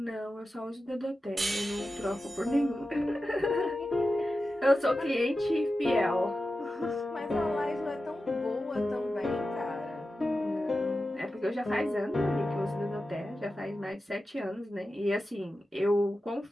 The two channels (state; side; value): normal; both; correlation 0.92